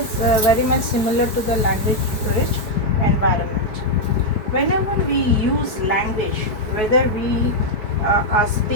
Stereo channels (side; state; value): right; late; 4.6 ms